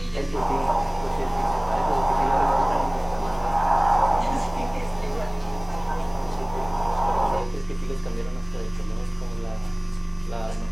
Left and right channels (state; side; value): noise; right; hum, 24 dB below the sound